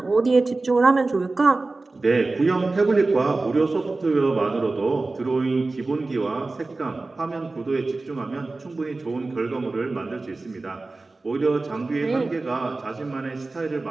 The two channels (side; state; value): left; quieter; 3.4 dB